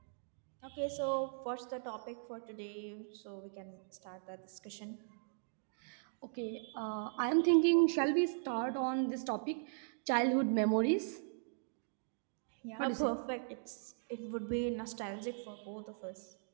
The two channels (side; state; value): left; silent; digital silence